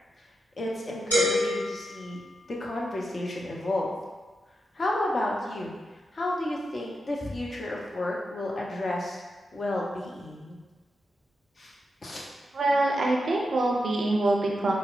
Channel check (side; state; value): both; normal; correlation 0.87